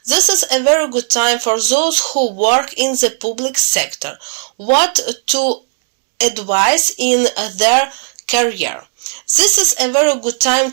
This is a very good time for those who work in the public sector. What to advise in their career. This is a very good time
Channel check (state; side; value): silent; left; digital silence